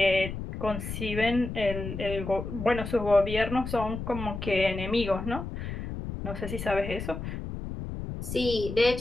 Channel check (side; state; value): left; noise; rumble, 7 dB below the sound